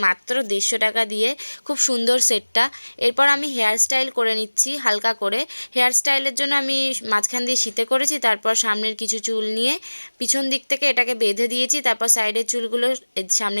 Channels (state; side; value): inverted; both; correlation -1.00